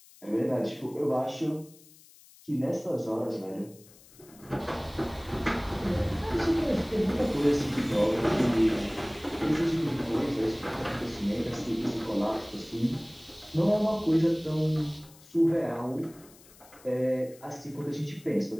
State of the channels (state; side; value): noise; left; hiss, 24 dB below the sound